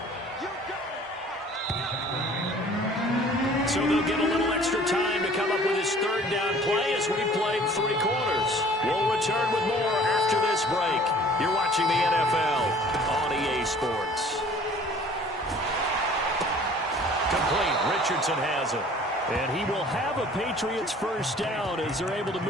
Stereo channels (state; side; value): normal; both; correlation 0.51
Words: So they'll get a little extra time to come up with his 3rd down play as we played 3 quarters. We'll return with more after this break. You're watching the NFL on EA Sports. Complete. Richardson has it. And he will have a Patriots first down as they're able to